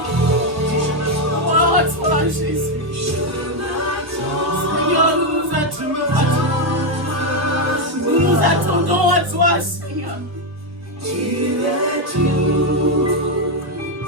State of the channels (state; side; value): late; left; 1.2 ms